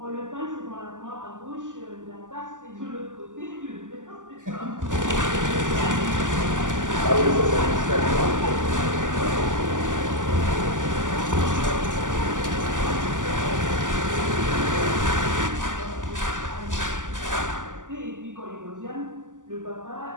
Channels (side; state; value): left; late; 0.87 ms